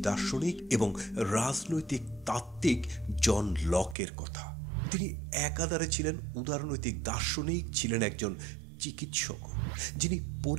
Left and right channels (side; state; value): left; drops out; at 4.0 s